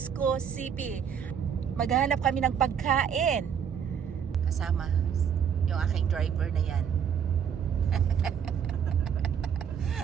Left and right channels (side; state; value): left; quieter; 7.9 dB